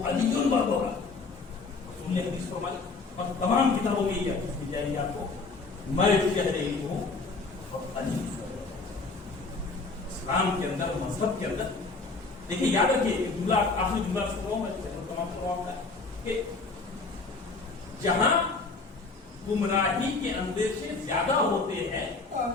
علی البابا رسول نے حدیث فرمائی اور تمام کتابوں میں یہ حدیث مل جائے گی آپ کو. میں شہر علم ہوں اور علی. اسلام کے اندر، مذہب کے اندر دیکھیے، یاد رکھیے جملہ، آخری جملہ سنو میں تمام کرواؤں گا کہ جہاں گمراہی کے اندیشے زیادہ ہوتے ہیں،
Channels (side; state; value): right; quieter; 4.0 dB